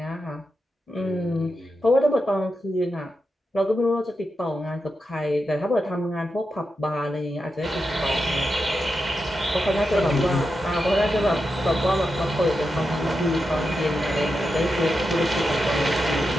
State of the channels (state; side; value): normal; both; correlation 0.88